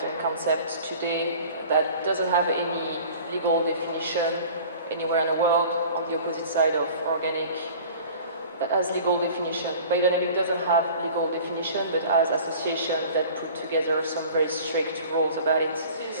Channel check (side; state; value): both; inverted; correlation -0.44